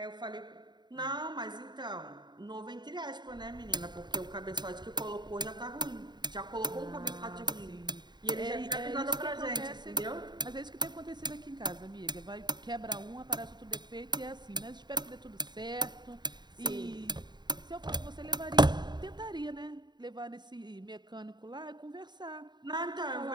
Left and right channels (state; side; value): late; left; 0.21 ms